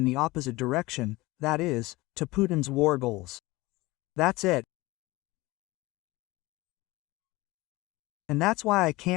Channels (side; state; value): right; quieter; 20.8 dB